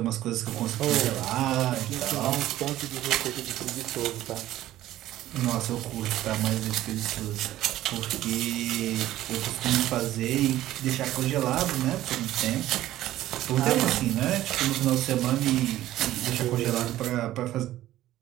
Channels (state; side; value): quieter; left; 14.3 dB